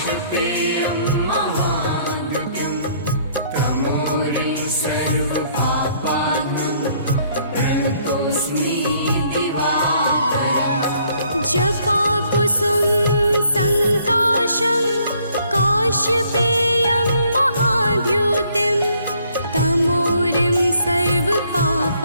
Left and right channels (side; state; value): both; inverted; correlation -0.64